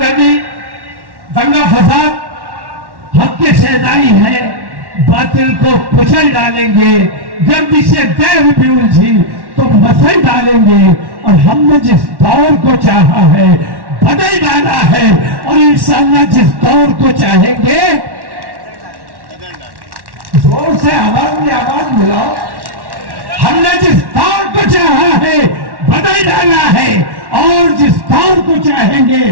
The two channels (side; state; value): left; late; 1.1 ms